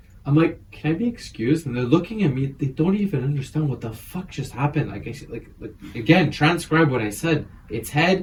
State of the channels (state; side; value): identical; both; correlation 1.00